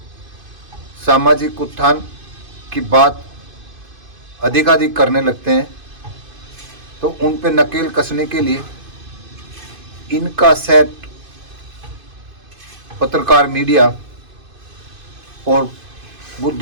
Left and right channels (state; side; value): late; left; 2.5 ms